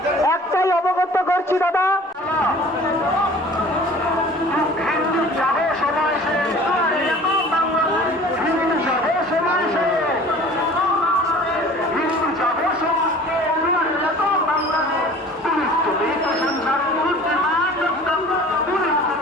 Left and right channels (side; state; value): both; normal; correlation 0.45